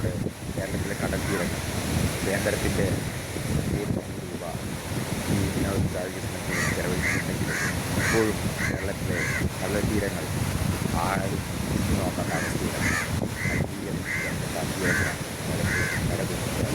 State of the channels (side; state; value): both; identical; correlation 1.00